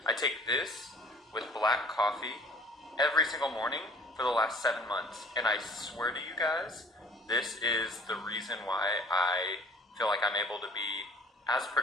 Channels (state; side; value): normal; both; correlation 0.50